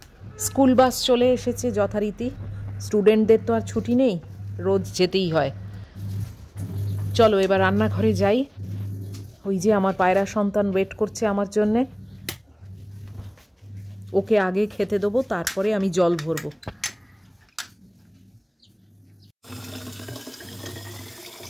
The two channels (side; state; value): both; identical; correlation 1.00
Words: স্কুল বাস চলে এসেছে যথারীতি। স্টুডেন্টদের তো আর ছুটি নেই, রোজ যেতেই হয়। চলো এবার রান্নাঘরে যাই। ওই যে আমার পায়রা সন্তান ওয়েট করছে আমার জন্যে, ওকে আগে খেতে দেবো, তারপরে আমি জল ভরবো।